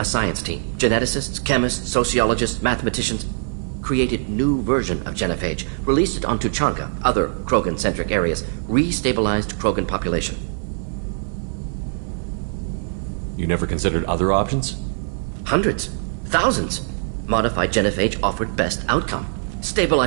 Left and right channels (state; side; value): silent; left; 61 dB below the other